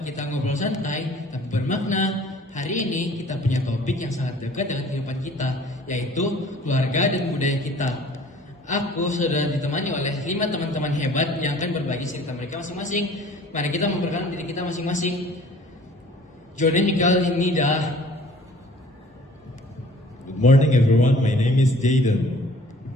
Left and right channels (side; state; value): both; normal; correlation 0.51